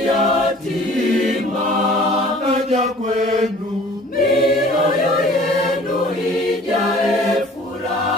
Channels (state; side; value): normal; both; correlation 0.49